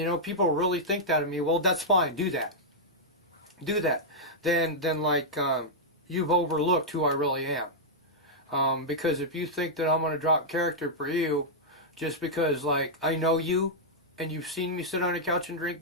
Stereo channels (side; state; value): both; normal; correlation -0.07